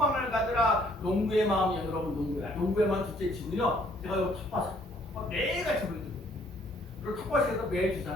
가져라. 농부의 마음이요. 여러분 농부의 마음 둘째 치고요. 제가 이 텃밭 매일같이 보여드려요. 그리고 텃밭에서 매일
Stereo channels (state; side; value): normal; both; correlation 0.63